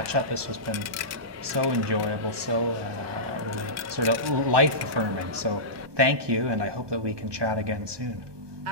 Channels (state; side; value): late; left; 1.2 ms